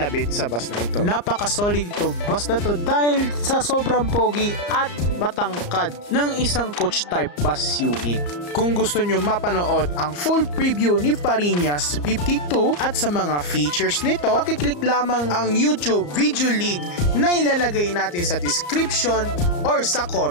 sa bus na ito. Napaka-solid itong bus na to dahil sa sobrang pogi at matangkad ng isang coach type bus unit. Kung gusto nyo mapanood ang full preview ni Fariñas 52 at sa mga features nito, pakiclick lamang ang YouTube video link na ilalagay natin sa description or sa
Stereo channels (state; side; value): late; right; 34 ms